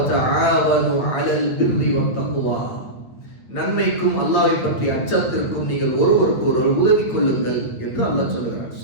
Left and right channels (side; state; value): right; late; 9.1 ms